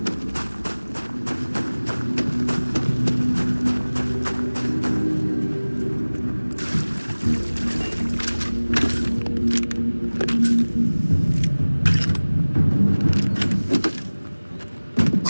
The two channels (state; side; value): inverted; both; correlation -1.00